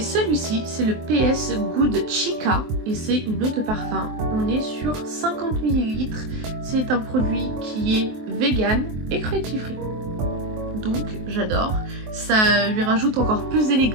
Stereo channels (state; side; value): late; left; 23 ms